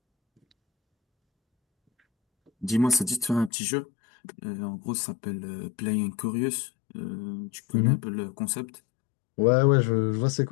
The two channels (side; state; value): right; drops out; at 3.5 s